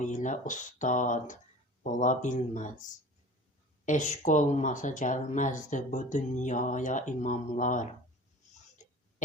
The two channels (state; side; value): normal; both; correlation 0.41